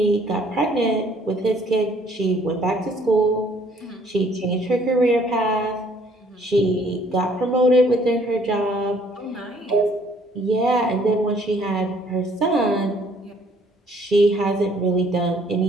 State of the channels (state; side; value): normal; both; correlation 0.61